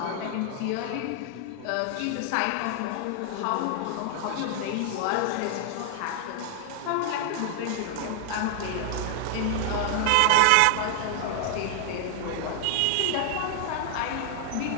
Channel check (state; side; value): different; both; correlation 0.00